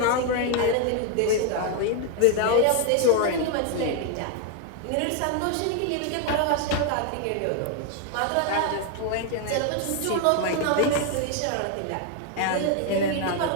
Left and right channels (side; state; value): both; different; correlation 0.01